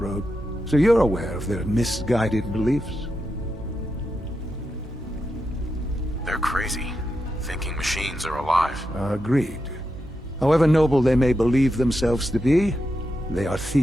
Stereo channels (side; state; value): both; normal; correlation 0.87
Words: so you're aware of their misguided beliefs. They're crazy, thinking machines are alive. Agreed. However noble they may believe themselves to be, they are